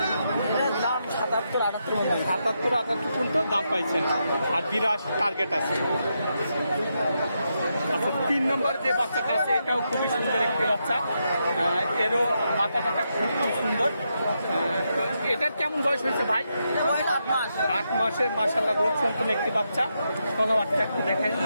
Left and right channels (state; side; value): inverted; both; correlation -0.83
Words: এটার দাম 77-78 মতো। 77-78 পর্যন্ত দাম পাইছেন। আর 82 টার্গেট আছে। আচ্ছা, 3 নম্বর যে বাচ্চাটা আছে এটাও খুবই সুন্দর একটি বাচ্চা। এরও মাথাটা খুব সুন্দর। তো এটার কেমন বয়স হয়েছে ভাই? বয়স 8 মাস। 8 মাসের মাশাআল্লাহ গোট সম্পন্ন একটি বাচ্চা। তলাবারটা একটু দেখেন।